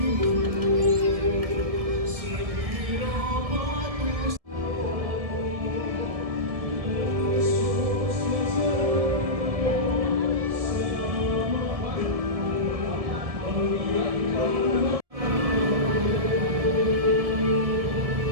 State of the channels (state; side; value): late; left; 1.7 ms